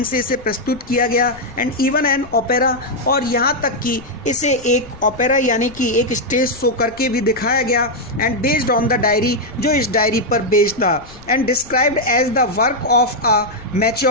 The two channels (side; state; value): left; noise; rumble, 20 dB below the sound